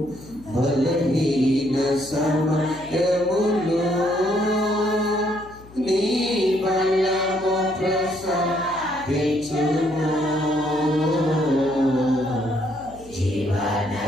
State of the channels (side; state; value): left; noise; hum, 21 dB below the sound